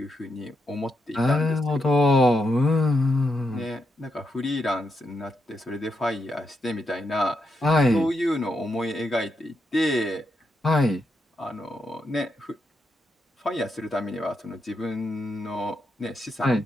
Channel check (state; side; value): normal; both; correlation 0.82